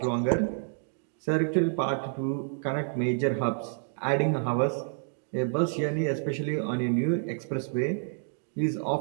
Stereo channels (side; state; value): left; silent; digital silence